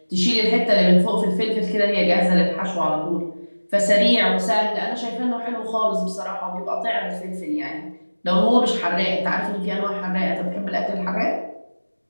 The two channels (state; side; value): inverted; both; correlation -1.00